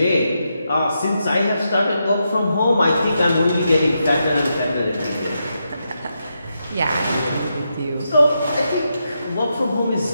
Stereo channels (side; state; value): both; inverted; correlation -0.84